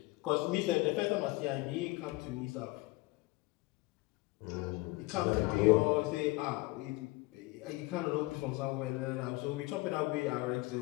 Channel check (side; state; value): right; quieter; 22.0 dB